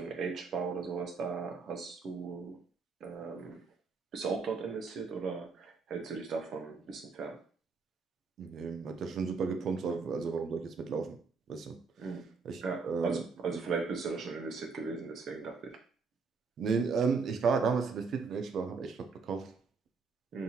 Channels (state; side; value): quieter; left; 4.8 dB